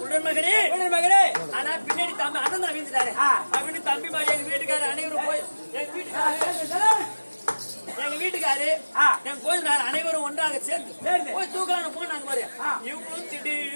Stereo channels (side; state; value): both; inverted; correlation -1.00